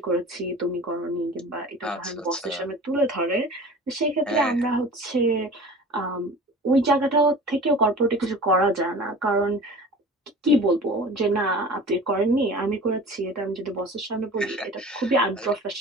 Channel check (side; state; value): both; normal; correlation 0.39